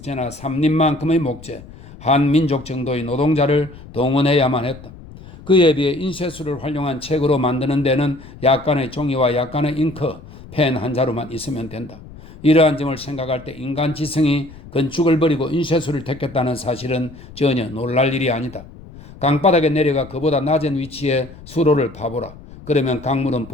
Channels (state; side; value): noise; left; rumble, 18 dB below the sound